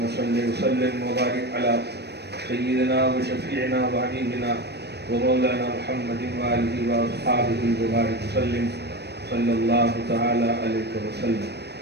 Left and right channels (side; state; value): left; late; 0.48 ms